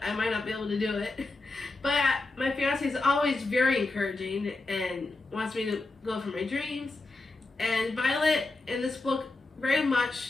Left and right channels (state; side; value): quieter; right; 3.2 dB